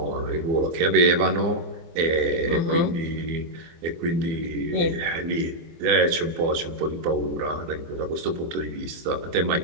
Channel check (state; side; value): late; left; 24 ms